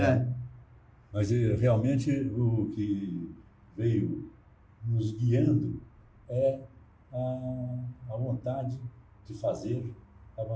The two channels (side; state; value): both; identical; correlation 1.00